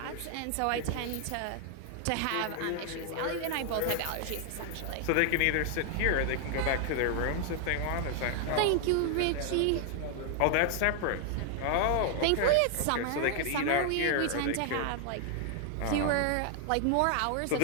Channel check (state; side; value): different; both; correlation 0.00